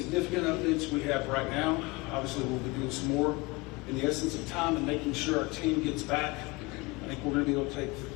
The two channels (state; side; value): quieter; right; 24.2 dB